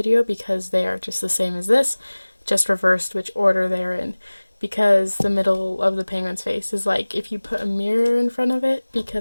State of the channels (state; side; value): inverted; both; correlation -1.00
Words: because they are just the same as this, just reversed which order they're in. Because the middle of the penguin's face is like if you put a mirror in front of it,